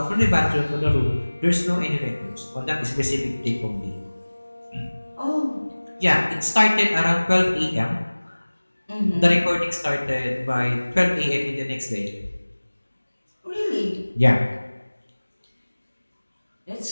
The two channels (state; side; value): inverted; both; correlation -1.00